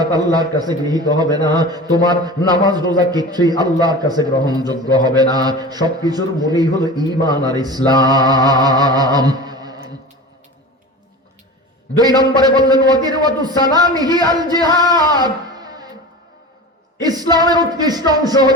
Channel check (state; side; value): normal; both; correlation 0.33